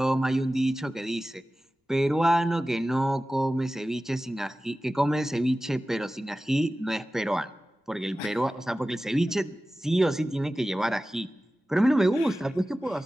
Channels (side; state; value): both; normal; correlation 0.96